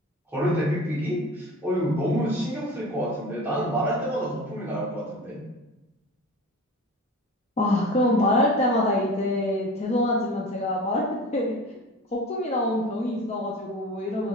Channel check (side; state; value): both; normal; correlation 0.35